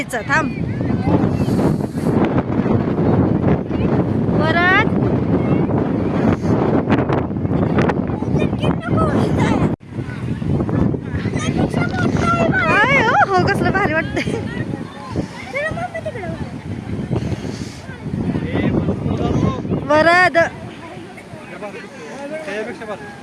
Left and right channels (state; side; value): identical; both; correlation 1.00